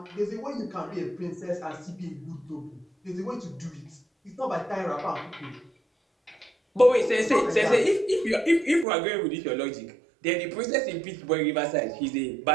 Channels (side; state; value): left; drops out; at 8.8 s